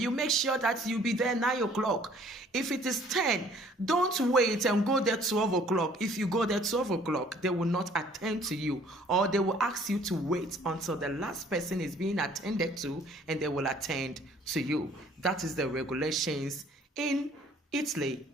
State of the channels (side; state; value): both; normal; correlation 0.57